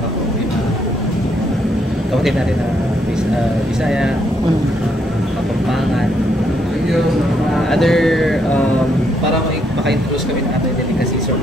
Kapatid natin na Bisaya, Kapampangan, other para maka-introduce kami ng other delicacies or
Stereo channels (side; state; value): both; normal; correlation 0.74